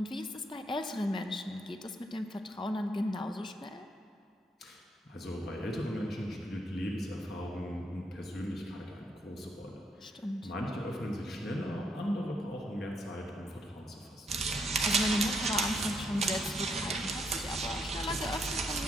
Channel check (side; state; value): both; normal; correlation 0.75